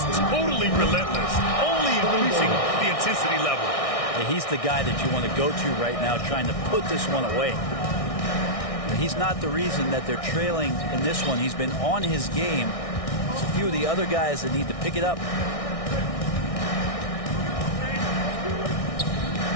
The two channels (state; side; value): late; right; 1.6 ms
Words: totally relentless, only increasing the intensity level. He's the guy that you want to go to right now, trying to put this one away. He's not the reason that they're trailing in this one. He's been on his game. It's a few of the other guys that need to pick it up.